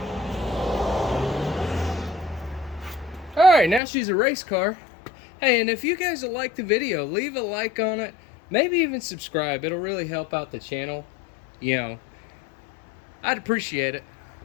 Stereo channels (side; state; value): right; drops out; at 3.8 s